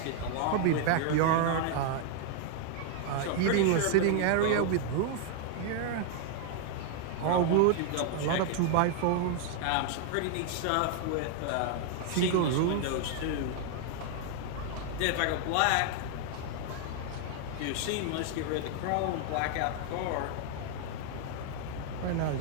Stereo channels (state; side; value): different; both; correlation 0.00